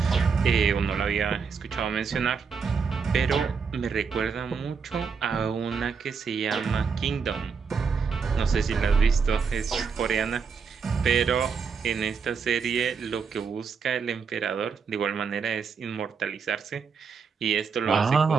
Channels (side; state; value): left; quieter; 5.7 dB